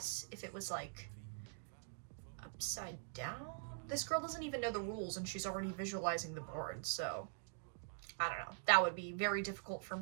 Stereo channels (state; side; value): silent; left; digital silence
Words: if it was like upside down? This girl doesn't even know the rules and she's already visualizing the board, so I don't know. That would be very difficult for